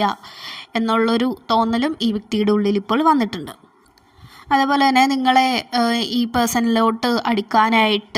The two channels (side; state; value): both; identical; correlation 1.00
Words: എന്നുള്ളൊരു തോന്നലും ഈ വ്യക്തിയുടെ ഉള്ളിൽ ഇപ്പോൾ വന്നിട്ടുണ്ട്. അതേപോലെ തന്നെ നിങ്ങളെ ഈ പേഴ്സണിലോട്ട്